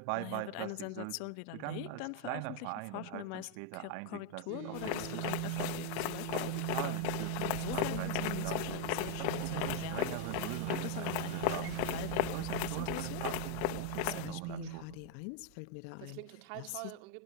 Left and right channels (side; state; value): both; different; correlation 0.01